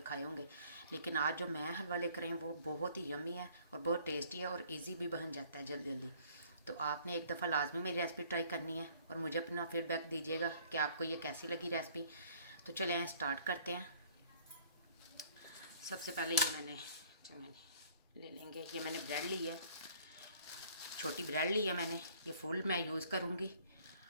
खाए होंगे। लेकिन आज जो मैं हलवा लेकर आई हूँ वो बहुत ही यम्मी है और बहुत टेस्टी है और इजी भी बन जाता है जल्दी जल्दी। तो आपने एक दफ़ा लाजमी मेरी रेसिपी ट्राई करनी है और मुझे अपना फीडबैक दीजिएगा कि आपको ये कैसी लगी रेसिपी। तो चले स्टार्ट करते हैं। सबसे पहले ये मैंने ले लेंगे, ये मैंने ब्रेड ली है, छोटी ब्रेड ली है मैंने, ये फुल मैं यूज़ करूँगी।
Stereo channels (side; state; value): both; inverted; correlation -0.57